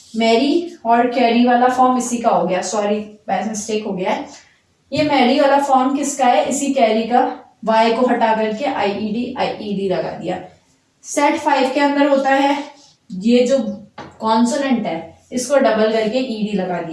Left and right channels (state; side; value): identical; both; correlation 1.00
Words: मैरी और कैरी वाला फॉर्म इसी का हो गया। सॉरी, बाय मिस्टेक हो गया है। ये मैरी वाला फॉर्म किसका है? इसी कैरी का। वाई को हटा करके आईईडी लगा दिया। सेट 5 के अंदर होता है ये जो कॉन्सोनेंट है इसको डबल करके ईडी लगा